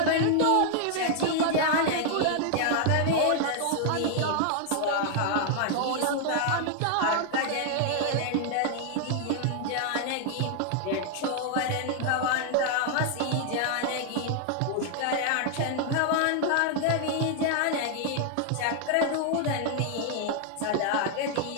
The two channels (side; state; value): both; different; correlation 0.00